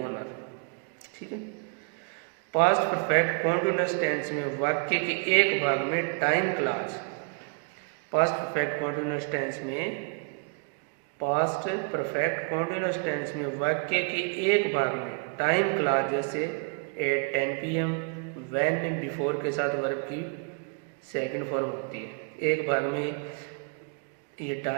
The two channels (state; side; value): quieter; left; 37.6 dB